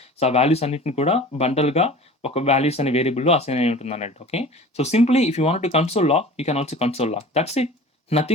So, ఆ వాల్యూస్ అన్నిటిని కూడా బండల్‌గా ఒక వాల్యూస్ అనే వేరియబుల్‌లో అసైన్ అయి ఉంటుందన్నట్టు. Okay. So, simply if you want to console log, you can also console log. That's it.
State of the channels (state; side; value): normal; both; correlation 0.41